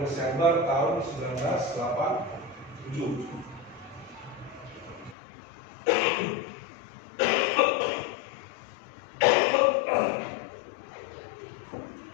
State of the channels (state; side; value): drops out; right; at 5.2 s